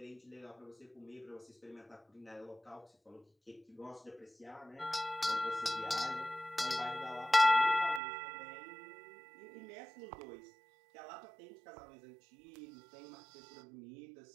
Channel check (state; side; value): drops out; left; at 8.0 s